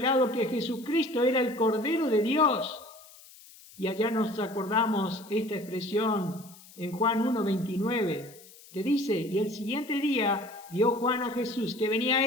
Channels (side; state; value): left; noise; hiss, 22 dB below the sound